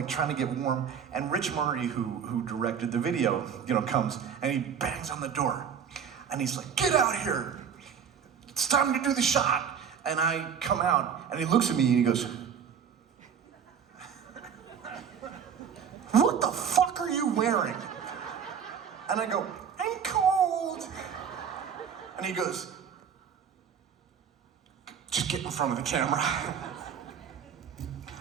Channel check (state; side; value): quieter; left; 7.5 dB